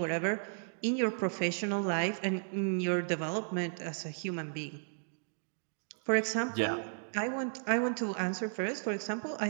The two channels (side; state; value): left; silent; digital silence